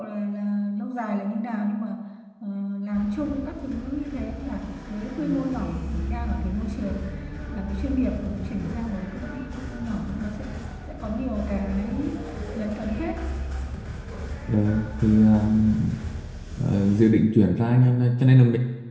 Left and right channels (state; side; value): identical; both; correlation 1.00